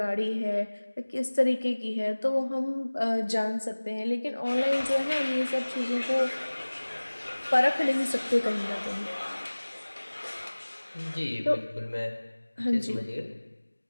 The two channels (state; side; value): inverted; both; correlation -1.00